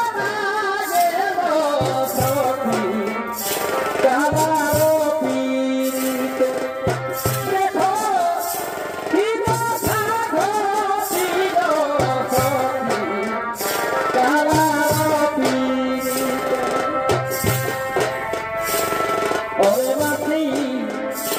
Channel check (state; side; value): identical; both; correlation 1.00